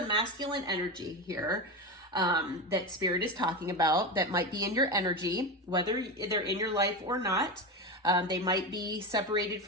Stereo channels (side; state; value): both; normal; correlation 0.20